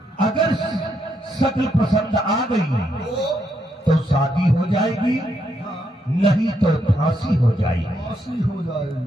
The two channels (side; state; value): both; normal; correlation 0.78